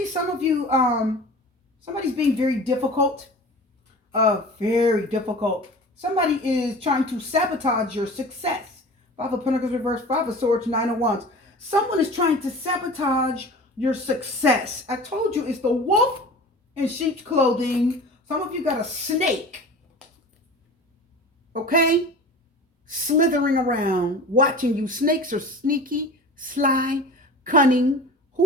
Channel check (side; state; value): both; normal; correlation 0.38